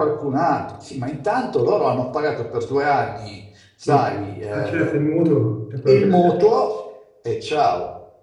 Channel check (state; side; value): identical; both; correlation 1.00